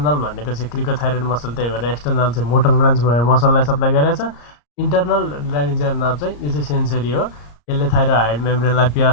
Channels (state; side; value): late; right; 34 ms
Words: भनेको चाहिँ क्रिकोथाइरोइड मसल, त्यही भएर एक्सटर्नल चाहिँ मोटर ब्रान्च भयो, मसललाई सप्लाई गरेको छ। इन्टर्नल ल्यारिन्जियल नर्भ चाहिँ यो चाहिँ सेन्सरी हो, यसले थाइरोइड मेम्ब्रेनलाई